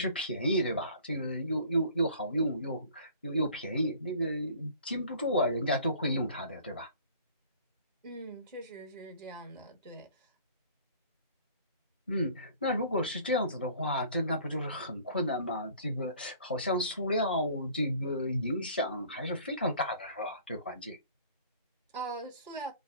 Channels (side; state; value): both; inverted; correlation -0.51